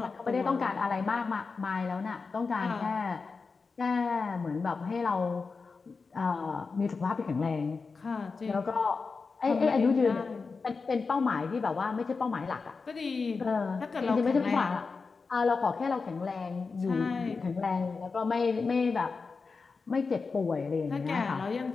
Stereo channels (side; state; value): right; quieter; 4.6 dB